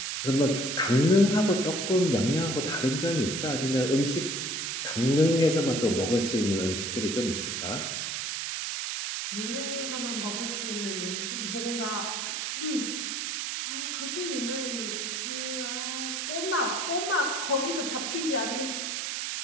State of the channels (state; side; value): noise; right; hiss, 2 dB below the sound